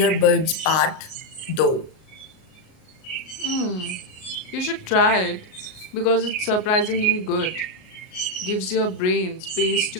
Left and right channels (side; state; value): right; late; 38 ms